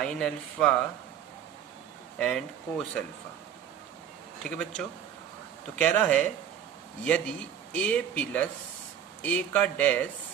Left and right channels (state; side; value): quieter; left; 9.2 dB